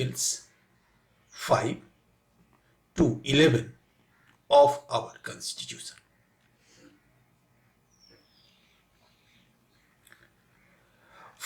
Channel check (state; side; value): identical; both; correlation 1.00